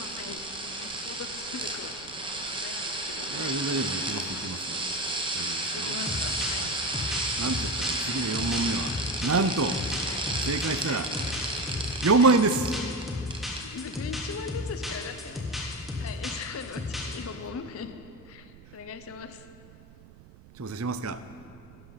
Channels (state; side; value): noise; right; rumble, 22 dB below the sound